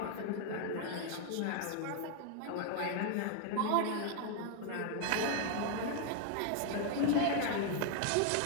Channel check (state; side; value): different; both; correlation 0.00